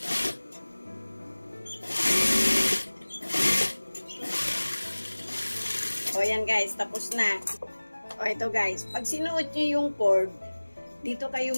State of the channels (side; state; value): both; inverted; correlation -1.00